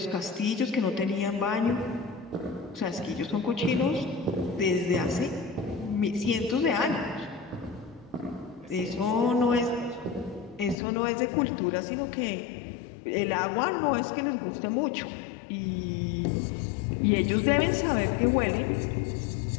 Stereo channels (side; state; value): right; drops out; at 10.8 s